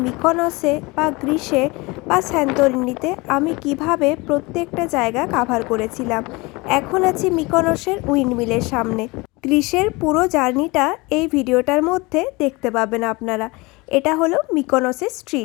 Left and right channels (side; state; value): right; quieter; 24.5 dB